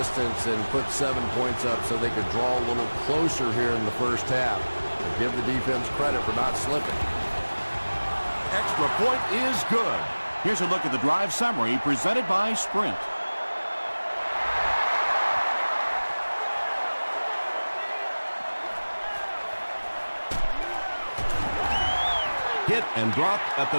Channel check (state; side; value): inverted; both; correlation -1.00